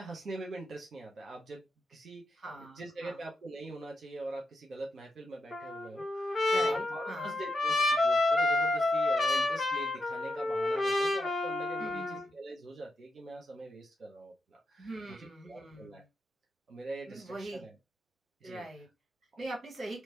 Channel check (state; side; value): normal; both; correlation 0.85